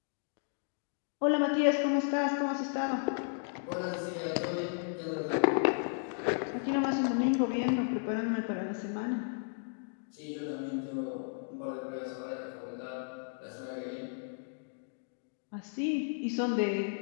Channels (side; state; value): right; silent; digital silence